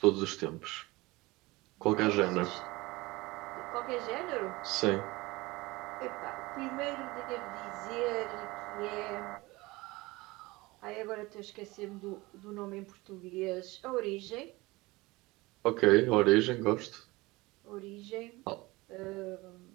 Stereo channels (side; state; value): left; quieter; 21.8 dB